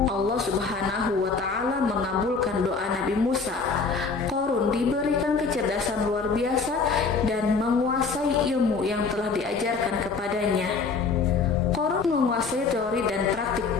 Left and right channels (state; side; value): quieter; right; 4.7 dB